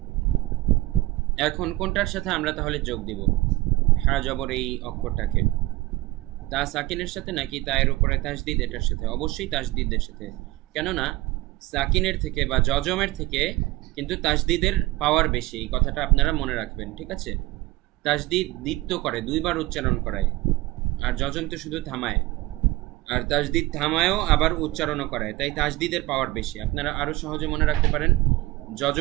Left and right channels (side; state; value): left; quieter; 19.1 dB